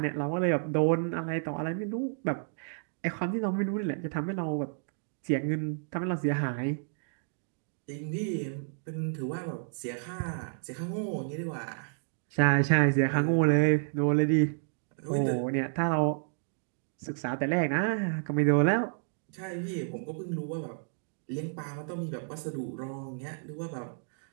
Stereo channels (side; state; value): left; silent; digital silence